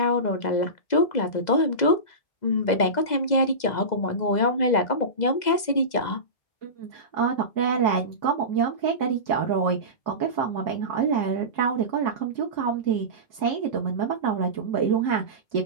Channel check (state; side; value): late; right; 2.0 ms